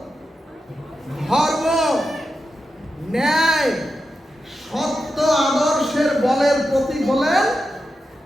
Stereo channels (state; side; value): normal; both; correlation 0.89